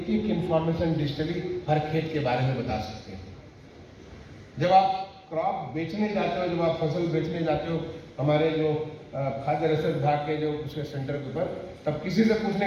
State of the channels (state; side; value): identical; both; correlation 1.00